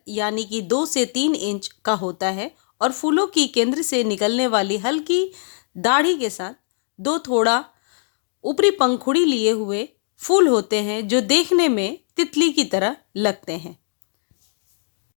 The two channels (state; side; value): silent; right; digital silence